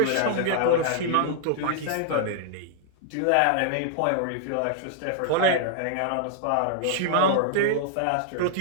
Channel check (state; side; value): different; both; correlation 0.00